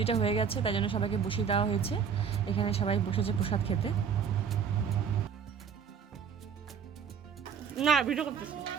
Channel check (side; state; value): left; quieter; 6.9 dB